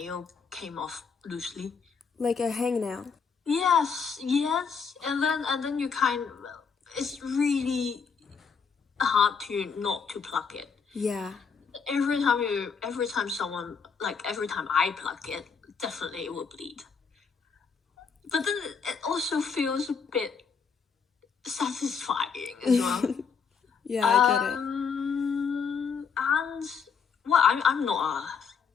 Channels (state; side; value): quieter; right; 6.0 dB